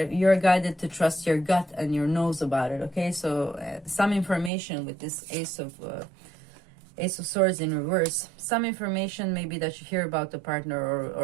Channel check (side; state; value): left; drops out; at 4.5 s